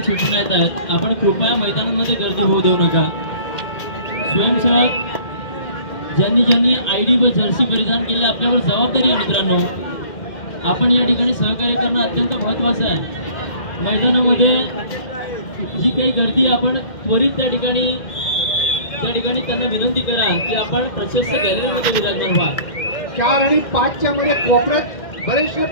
सूचना येत आहेत, आपण कृपया मैदानामध्ये गर्दी होऊ देऊ नका. स्वयंसेवक ज्यांनी ज्यांनी ID व जर्सी परिधान केले आपल्यावर जबाबदारी आहे मित्रांनो. आपण या ठिकाणी सहकार्य करणं अत्यंत महत्त्वाचं आहे. मैदानामध्ये जी काही गर्दी आपण त्वरित त्या ठिकाणी त्यांना विनंती करा की आपण प्रशस्त गॅलरीमध्ये विराजमान व्हा. 4 आणि 5 च्या मध्ये कोपऱ्यात बरेचसे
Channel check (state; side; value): late; right; 2.1 ms